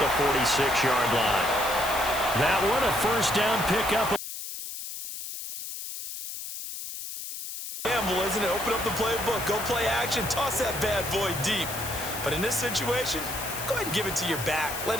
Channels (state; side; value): noise; left; hiss, 8 dB below the sound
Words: 46-yard line. That one, a first down pickup. Gamble, isn't it? Open up the playbook. Go play action. Toss that bad boy deep. But in this situation, go ahead and give it to your back. Let